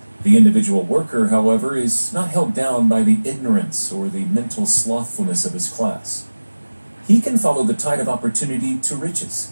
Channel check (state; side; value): inverted; both; correlation -1.00